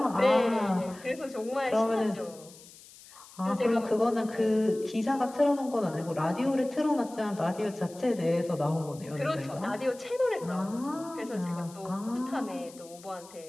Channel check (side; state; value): left; noise; hiss, 21 dB below the sound